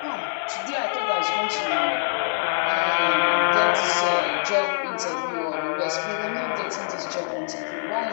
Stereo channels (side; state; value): right; silent; 57 dB below the other